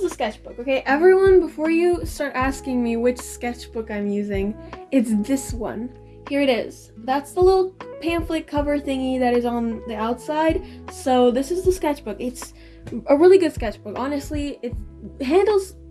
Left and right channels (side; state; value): both; identical; correlation 1.00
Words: the sketchbook, okay? Everyone, before you start asking me which sketchbook I'm using, it's this one. Here it is. That's the little pamphlet cover thingy that is on the outside. So this is the sketchbook. It's a really good sketchbook. Honestly, it handles